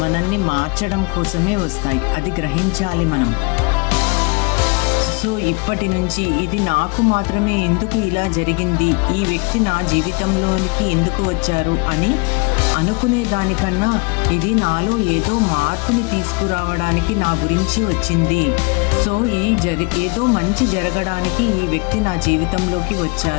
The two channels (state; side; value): quieter; right; 29.6 dB